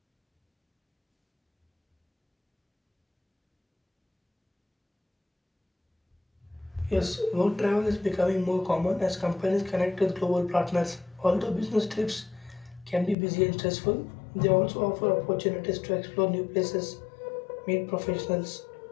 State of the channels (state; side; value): drops out; right; at 13.2 s